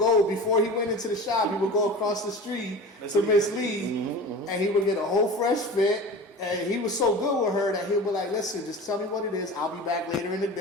before he went into the shop, he would go across the street to Miss Lee and he would get a whole fresh fit. And he was so good with her that he'll be like, "Listen, just tell me what it is. I'll be back later in the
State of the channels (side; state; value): both; normal; correlation 0.35